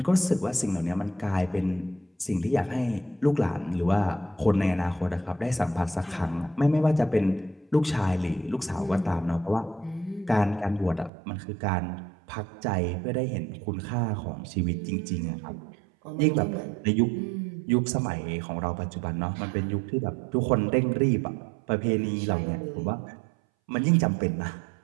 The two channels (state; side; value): drops out; left; at 11.1 s